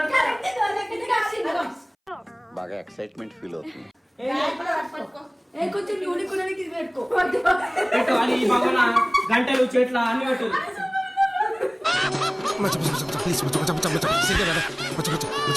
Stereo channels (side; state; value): both; identical; correlation 1.00